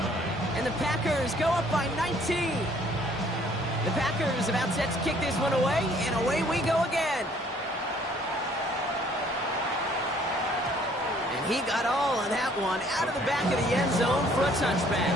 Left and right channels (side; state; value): both; normal; correlation 0.60